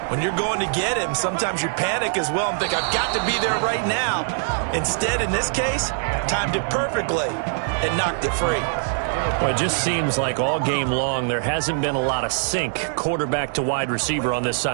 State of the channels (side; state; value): left; silent; digital silence